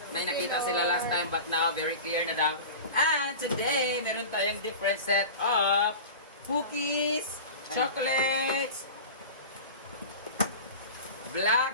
May nakita sila last time but now very clear na daw. And today, meron tayong different set of cookies, chocolates,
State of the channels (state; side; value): inverted; both; correlation -0.33